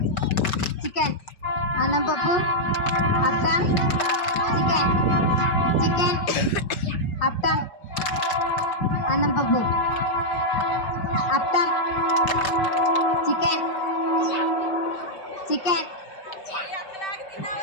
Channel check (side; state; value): right; late; 5.2 ms